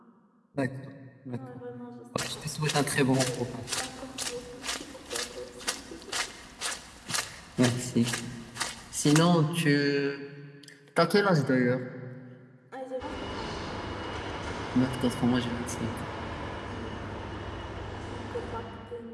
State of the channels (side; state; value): both; identical; correlation 1.00